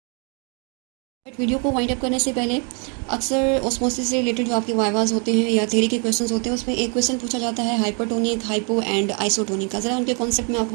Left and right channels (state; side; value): quieter; left; 37.3 dB